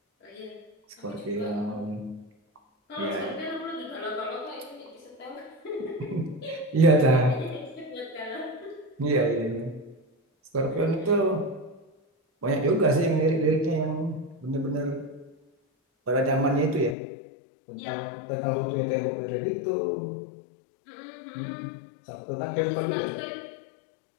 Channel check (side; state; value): right; drops out; at 16.9 s